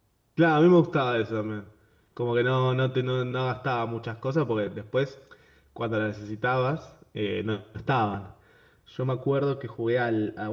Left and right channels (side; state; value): both; identical; correlation 1.00